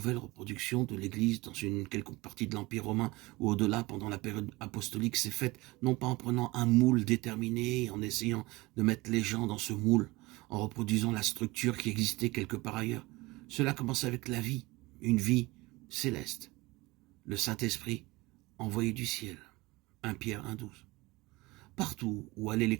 reproduction de l'Église dans une quelconque partie de l'Empire romain ou au-delà pendant la période apostolique s'est faite non pas en prenant un moule déterminé et en essayant de mettre les gens dans ce moule, en reproduisant la structure qui existait quelque part ailleurs. Cela commence avec la vie, une vie céleste. Le Saint-Esprit envoyé du ciel. 1 Pierre 1,12. Partout où allaient les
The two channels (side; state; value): left; quieter; 21.8 dB